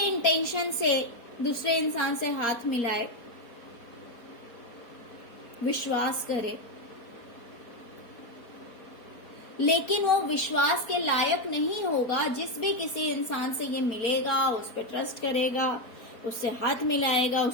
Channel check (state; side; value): late; right; 4.3 ms